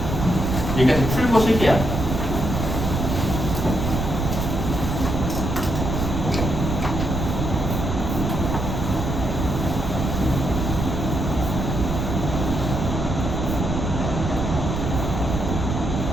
여기까지 풀고 쉴게요.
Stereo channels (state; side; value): noise; right; rumble, 2 dB below the sound